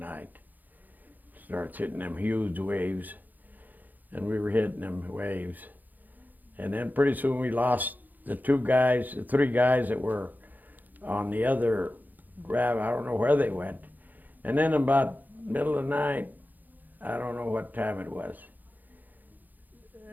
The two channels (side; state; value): left; late; 0.084 ms